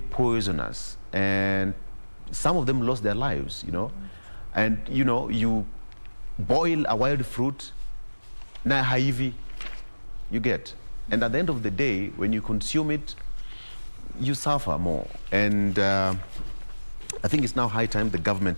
poisonous, and some of them lost their lives, you know. And you know, you boil a wild fruit, na haivi, you get, and at the end of the day, when you consume it, you suffer more. And I think it's now high time the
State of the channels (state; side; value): inverted; both; correlation -1.00